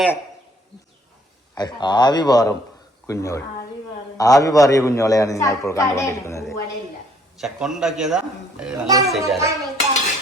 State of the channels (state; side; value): normal; both; correlation 0.63